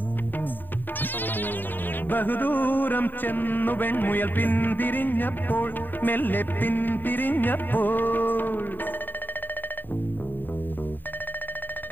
ബഹുദൂരം ചെന്നു വെൺമുയൽ പിന്തിരിഞ്ഞപ്പോൾ, മെല്ലെ പിന്തിരിഞ്ഞപ്പോൾ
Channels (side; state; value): right; late; 0.091 ms